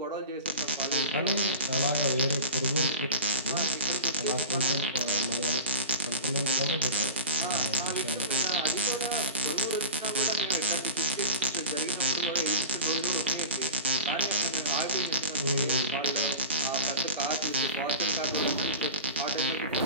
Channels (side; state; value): both; inverted; correlation -0.31